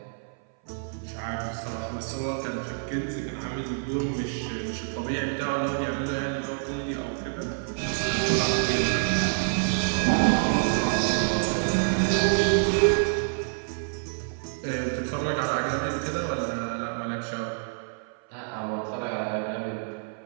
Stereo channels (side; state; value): left; silent; 58 dB below the other